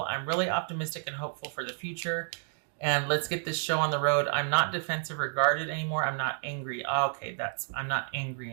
I'm really optimistic and hopeful for the future. And let's get this show on the road. I'm not defensive or guarded anymore. I'm not angry. Okay, I'm not angry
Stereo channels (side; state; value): left; silent; digital silence